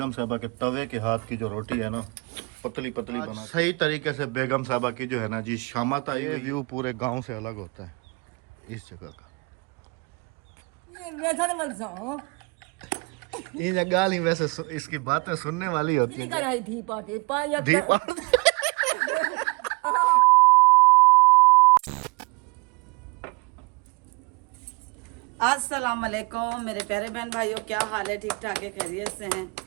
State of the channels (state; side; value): quieter; left; 29.9 dB